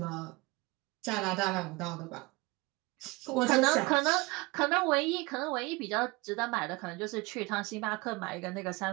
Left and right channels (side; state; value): left; quieter; 24.5 dB